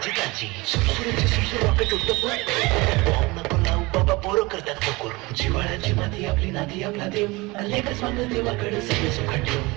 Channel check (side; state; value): left; quieter; 23.4 dB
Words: ताजी सुरसुरीची सुरसुर रॉकेट उडत बॉम्ब नको लावू बाबा पोरं करतात बकोर जिवाळ्याची माती आपली नाती आपला देव लेखच मागं देवाकडे सगळे सुखाट ठेव